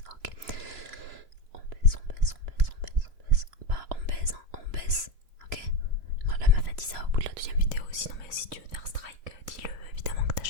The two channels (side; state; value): left; late; 2.9 ms